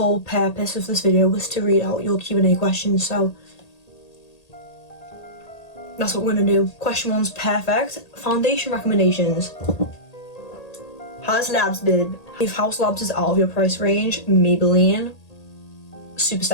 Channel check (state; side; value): late; right; 1.8 ms